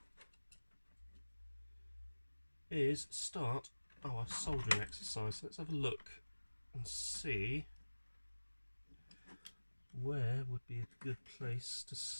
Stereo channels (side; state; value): both; inverted; correlation -1.00